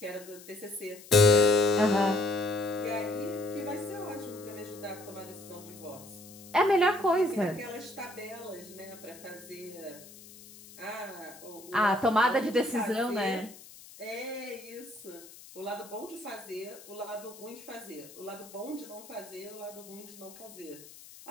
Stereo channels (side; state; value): left; noise; hiss, 19 dB below the sound